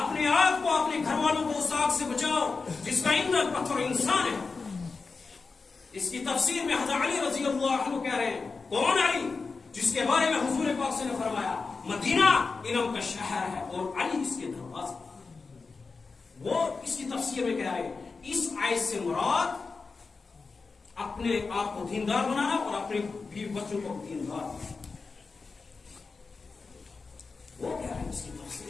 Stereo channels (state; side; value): quieter; right; 4.4 dB